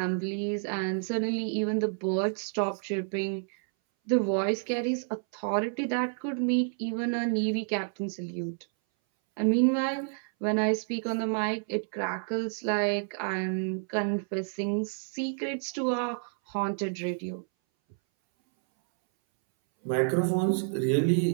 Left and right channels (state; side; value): silent; left; 58 dB below the other